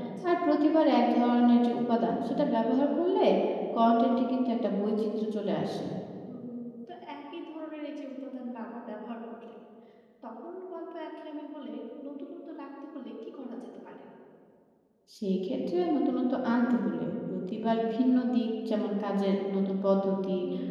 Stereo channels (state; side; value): identical; both; correlation 1.00